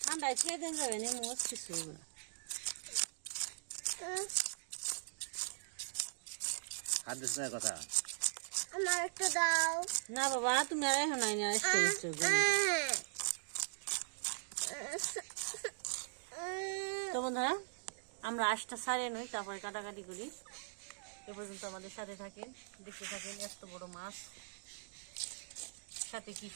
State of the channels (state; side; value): silent; left; digital silence